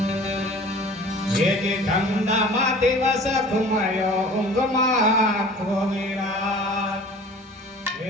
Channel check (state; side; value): normal; both; correlation 0.44